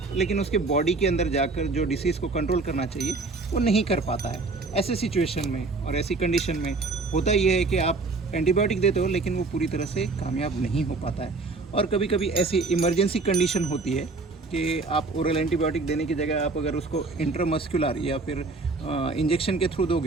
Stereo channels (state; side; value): quieter; left; 3.6 dB